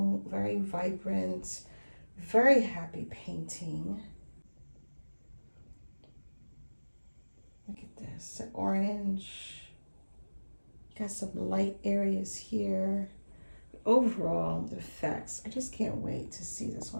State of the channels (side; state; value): both; inverted; correlation -1.00